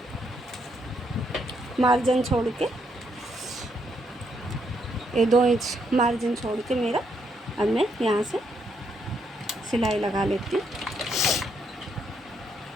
मार्जिन छोड़ के, ये 2 इंच मार्जिन छोड़ के मेरा, अब मैं यहाँ से सिलाई लगा लेती हूँ।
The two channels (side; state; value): both; normal; correlation 0.75